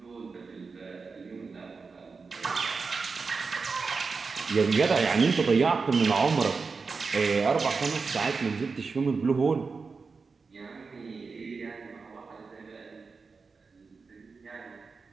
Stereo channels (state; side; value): quieter; left; 4.7 dB